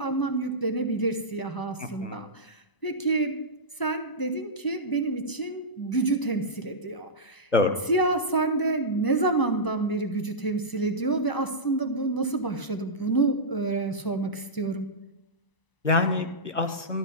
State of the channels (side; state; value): right; late; 1.0 ms